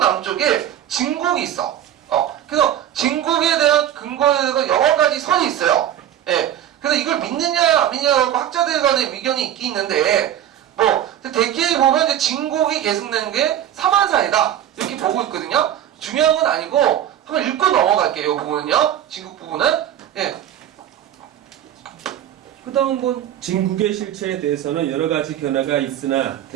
진국이 있어. 그래서 진국에 대한 근거에 대해서 여러 가지 설이 있어요. 예. 그래서 이걸 믿느냐 안 믿느냐고 학자들 간의 의견이 있긴 있는데 뭐 대개에 보면 이제 진국이 계승된 게 사만사이다 이렇게 보고 있거든요. 중요한 건 아니고 한번 읽고 넘어갈게요. 이 부분은요. 진국 부분은. 예. 그 다음은 뭐 진국의 실체에 대해서는 여러 가지 견해가 있으나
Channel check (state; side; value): quieter; left; 11.0 dB